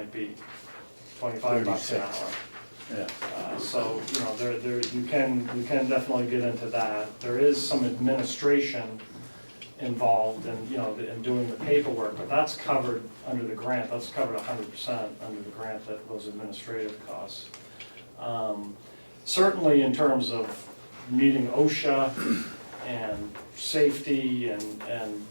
be $25 an 36. hour. Yeah. So, you know, you can definitely get into that. There is some administration involved in, you know, in doing the paperwork, but that's covered under the grant. That's covered 100% under the grant, those administrative costs. Certainly in terms of meeting OSHA and safety and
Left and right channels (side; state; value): both; inverted; correlation -1.00